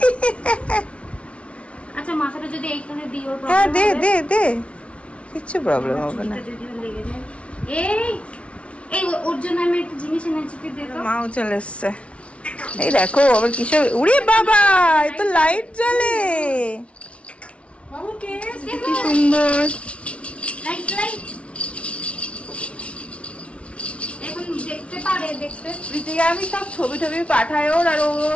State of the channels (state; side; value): late; right; 0.062 ms